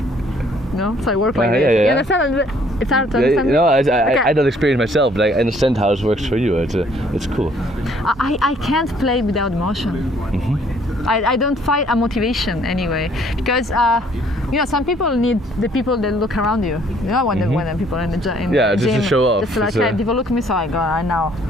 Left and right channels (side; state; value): both; normal; correlation 0.62